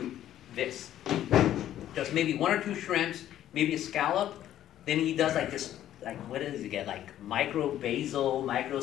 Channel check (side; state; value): right; quieter; 12.0 dB